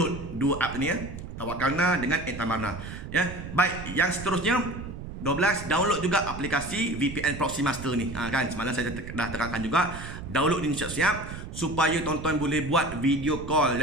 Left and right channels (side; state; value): right; noise; rumble, 10 dB below the sound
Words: dua app ni ya, Tawakkalna dengan Iktamarna ya. Baik, yang seterusnya 12, download juga aplikasi VPN Proxy Master ni. Kan semalam saya dah terangkan juga, download ni siap-siap supaya tuan-tuan boleh buat video call